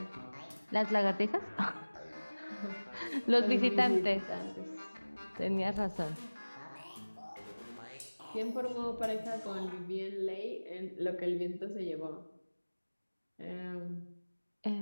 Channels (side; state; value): both; inverted; correlation -1.00